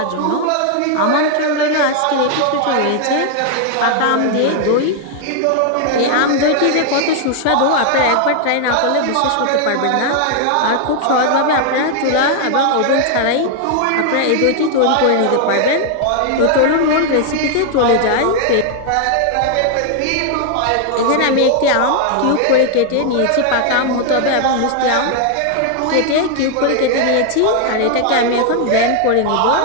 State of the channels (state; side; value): different; both; correlation 0.00